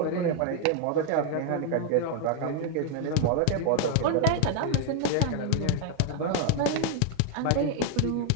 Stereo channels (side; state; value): both; different; correlation 0.00